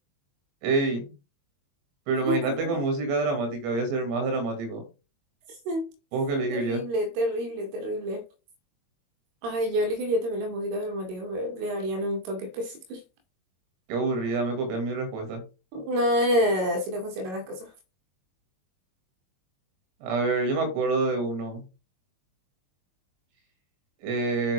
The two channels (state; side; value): late; left; 22 ms